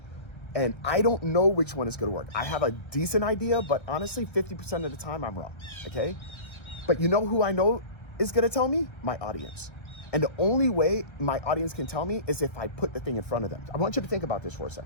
And I don't know which one is going to work. I have a decent idea, but honestly, 50% of the time I'm wrong, okay? But you know who I know is going to tell me? My audience. And the only way my audience can tell me is if I put the thing in front of them. I want you to think about this for a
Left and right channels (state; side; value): late; right; 1.3 ms